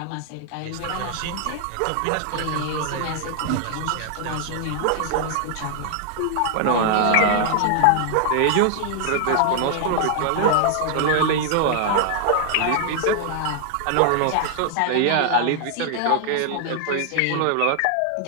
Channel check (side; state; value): both; different; correlation 0.00